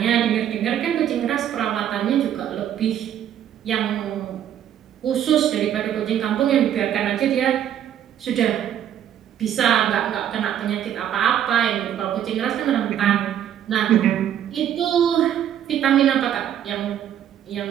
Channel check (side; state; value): left; quieter; 10.2 dB